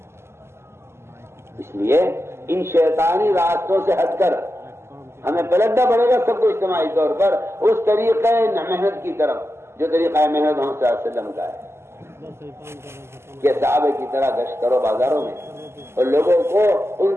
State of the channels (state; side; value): late; left; 0.12 ms